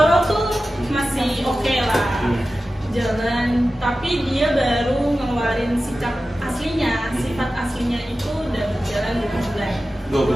tuh masih oke lah jalan, tapi dia baru ngeluarin sikap aslinya, sifat aslinya itu udah berjalan 2 bulan. 2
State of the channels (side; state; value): both; normal; correlation 0.94